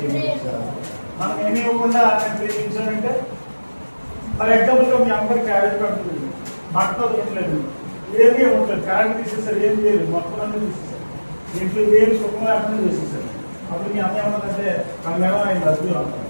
మనం ఏమి ఇవ్వకుండా నేను ప్రేమించానంటే ఫర్ ఎగ్జాంపుల్గా మీ అమ్మగారి క్యారేజ్ పడుతుంది, బట్టలు తినలేదు, ఏమీ ఇవ్వట్లేదు, కరెంట్ తీసేసారు, ఏం చేయలేదు, మొత్తం అన్నీ తీసేసారు, ఇంట్లో ఏమి సుఖం లేకుండా చేసేసారు. అప్పుడు మీ అమ్మ ఏమన్నదంటే మనమేమో ఆయన రద్దు అంటాం.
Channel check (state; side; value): inverted; both; correlation -1.00